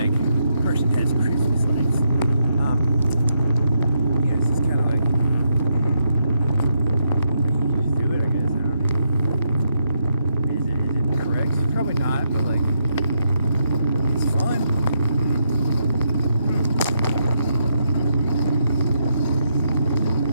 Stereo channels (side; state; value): both; inverted; correlation -0.80